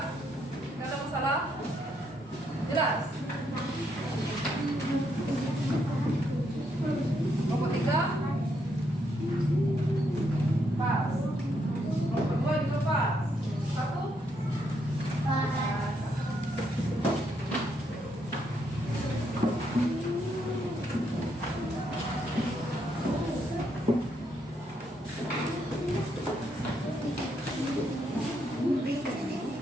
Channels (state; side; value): normal; both; correlation 0.76